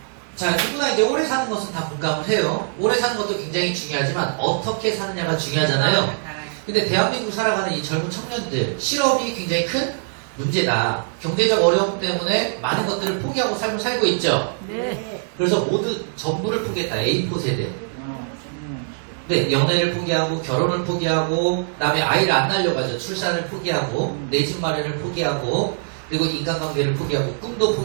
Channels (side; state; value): left; silent; digital silence